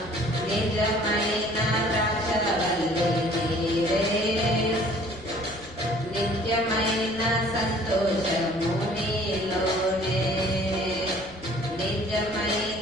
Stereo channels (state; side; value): noise; left; rumble, 20 dB below the sound